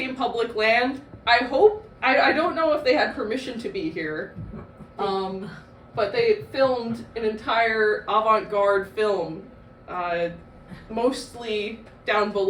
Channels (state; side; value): identical; both; correlation 1.00